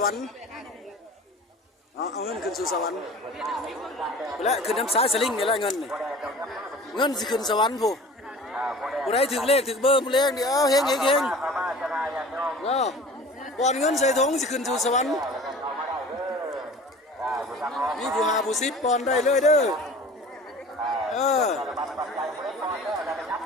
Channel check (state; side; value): normal; both; correlation 0.42